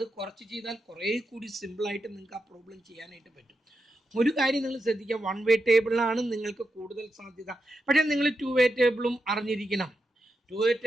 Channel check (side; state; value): both; normal; correlation 0.86